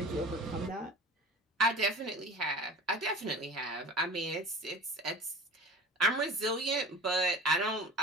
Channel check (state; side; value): normal; both; correlation 0.37